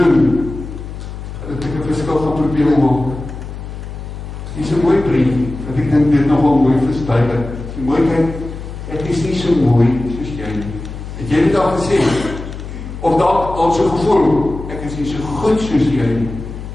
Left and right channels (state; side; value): noise; left; hum, 10 dB below the sound